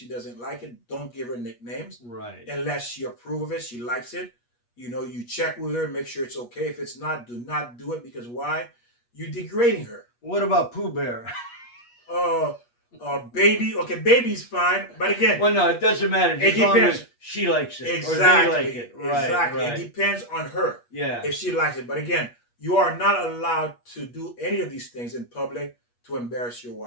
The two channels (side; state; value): right; late; 8.4 ms